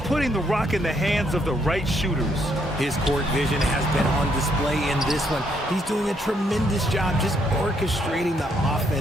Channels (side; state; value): both; normal; correlation 0.72